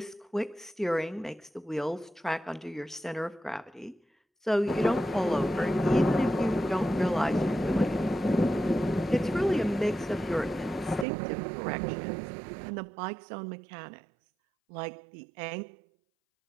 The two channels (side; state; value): left; drops out; at 11.1 s